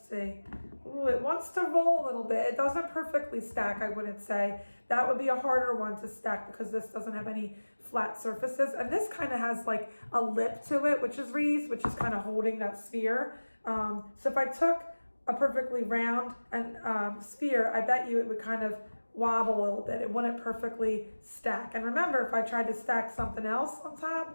see. Ooh, it wants to roll a little bit. It doesn't perfectly stack, I wouldn't say. That would be a harder one to stack because this doesn't have any flat surfaces. And this kind of has like a lip to it, which is raised, which is kind of holding that sphere. So if I took a perfectly round and sphere, I bet you it would kind of wobble a little bit. It wouldn't perfectly stack. And remember, if I tried to stack something else on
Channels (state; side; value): inverted; both; correlation -1.00